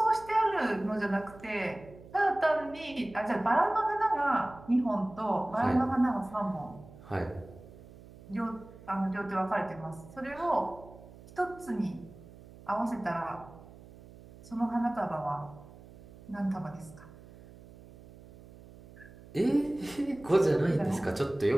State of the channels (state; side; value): noise; right; hum, 20 dB below the sound